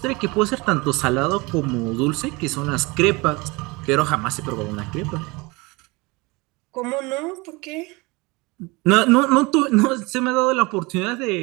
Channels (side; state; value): left; quieter; 25.1 dB